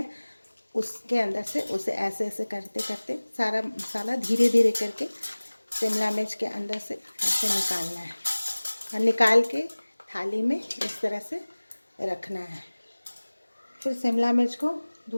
उसके अंदर से उसे ऐसे ऐसे करते करते सारा मसाला धीरे धीरे करके शिमला मिर्च के अंदर से ऐसे निकालना है। और निकाल के थाली में इस तरह से रखना है। फिर शिमला मिर्च को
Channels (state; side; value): inverted; both; correlation -1.00